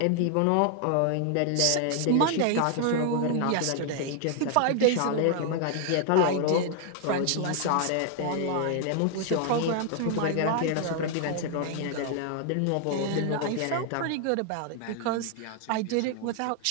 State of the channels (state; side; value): different; both; correlation 0.00